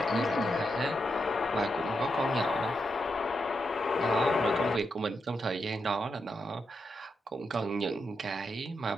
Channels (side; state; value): both; normal; correlation 0.84